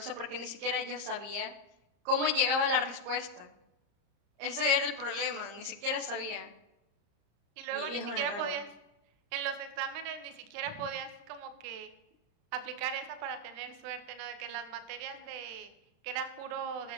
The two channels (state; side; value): late; left; 34 ms